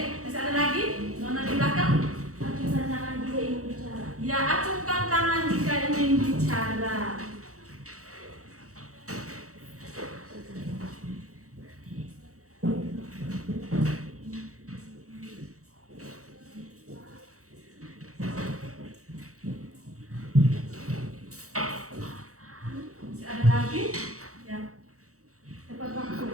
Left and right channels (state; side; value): late; left; 0.65 ms